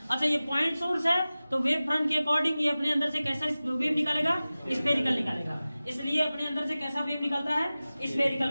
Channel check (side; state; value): both; inverted; correlation -0.97